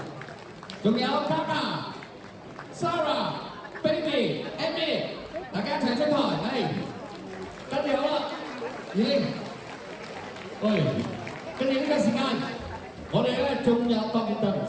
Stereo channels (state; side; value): identical; both; correlation 1.00